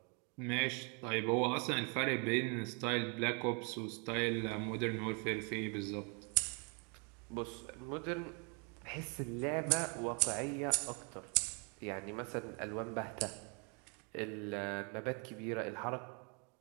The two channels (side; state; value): left; quieter; 35.3 dB